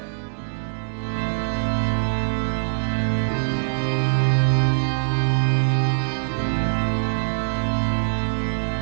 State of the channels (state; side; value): silent; left; digital silence